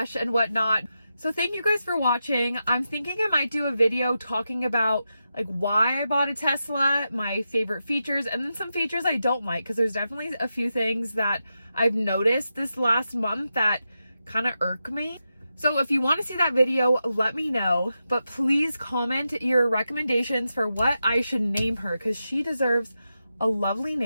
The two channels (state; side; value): inverted; both; correlation -0.88